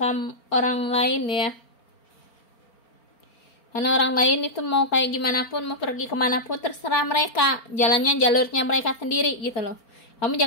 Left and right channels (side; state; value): right; late; 4.4 ms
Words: orang lain, ya. Karena orang lain itu mau kayak gimana pun, mau pergi kemana pun, terserah mereka, jalurnya mereka sendiri, gitu loh. Kamu